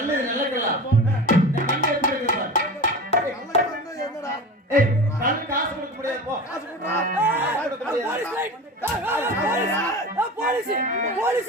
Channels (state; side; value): normal; both; correlation 0.32